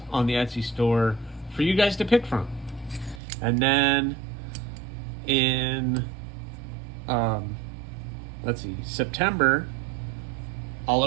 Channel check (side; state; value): left; drops out; at 3.2 s